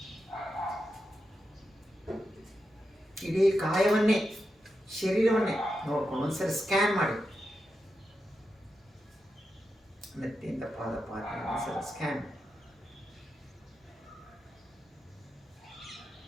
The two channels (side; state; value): both; normal; correlation 0.88